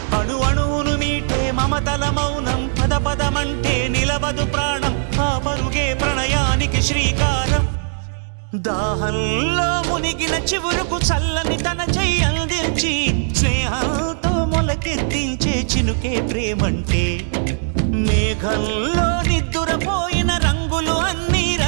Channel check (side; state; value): left; silent; digital silence